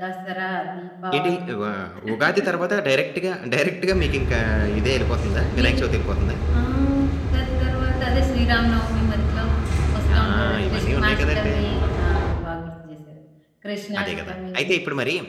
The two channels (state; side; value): identical; both; correlation 1.00